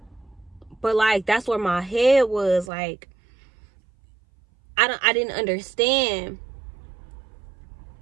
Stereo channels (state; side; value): drops out; left; at 2.7 s